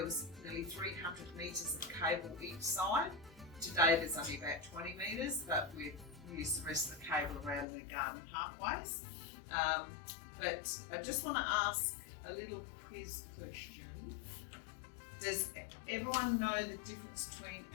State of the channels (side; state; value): right; drops out; at 7.7 s